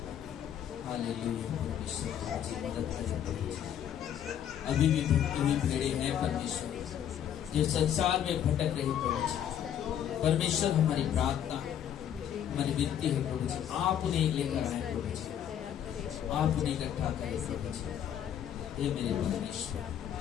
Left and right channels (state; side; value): quieter; right; 9.8 dB